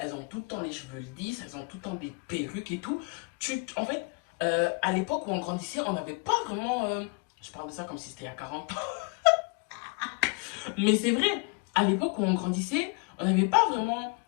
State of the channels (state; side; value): quieter; right; 34.3 dB